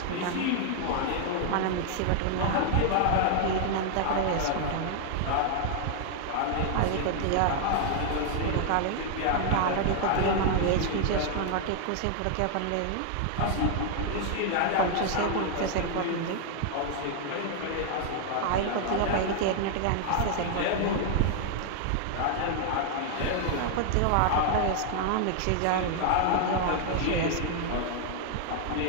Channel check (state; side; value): different; both; correlation 0.00